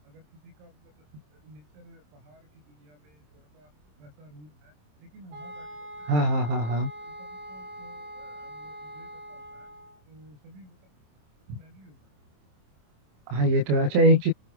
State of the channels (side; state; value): left; late; 27 ms